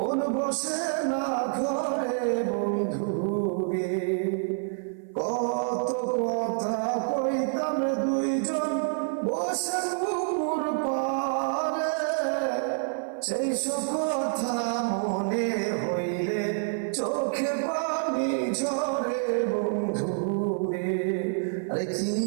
বসে না ঘরে বন্ধু রে। কত কথা কইতাম দুইজন বসে পুকুর পারে, সেই সব কথা মনে হইলে চোখে পানি ঝরে বন্ধু রে। আরে কি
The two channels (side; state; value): left; silent; 58 dB below the other